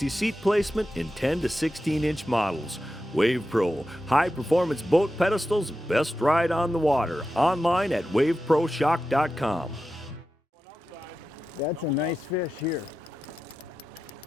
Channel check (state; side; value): normal; both; correlation 0.91